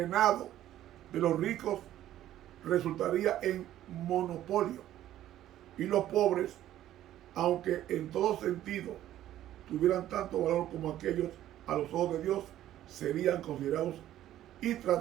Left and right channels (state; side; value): quieter; left; 12.8 dB